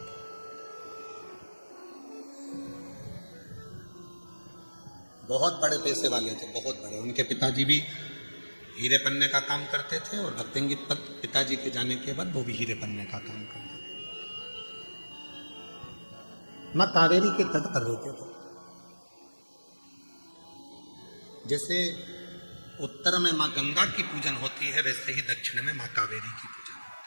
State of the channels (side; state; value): both; inverted; correlation -1.00